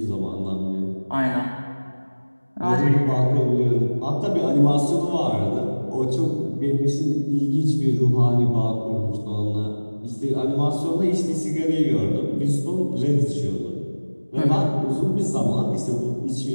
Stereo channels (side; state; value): both; inverted; correlation -1.00